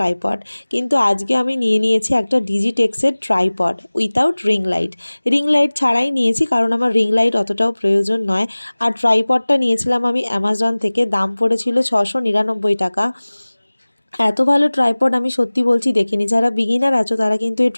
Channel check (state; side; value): inverted; both; correlation -1.00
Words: কিন্তু আজকে আমি নিয়ে নিয়েছি একটা ডিজিটেক্সের tripod without ring light. Ring light ছাড়াই নিয়েছি, কারণ আমার রিং লাইট অতটাও প্রয়োজন নয়। আর ট্রাইপডটা নিয়েছিলাম আমি অ্যামাজন থেকে, দাম পড়েছিল 699 টাকা। এত ভালো ট্রাইপড আমি সত্যি বলছি দেখিনি। যারা বিগিনার আছো তারা কিন্তু এই